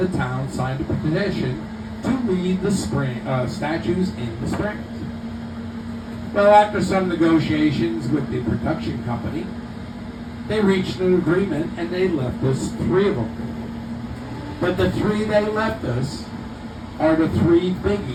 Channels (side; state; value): both; identical; correlation 1.00